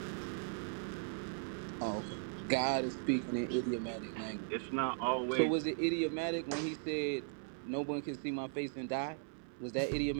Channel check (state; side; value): silent; left; 52 dB below the other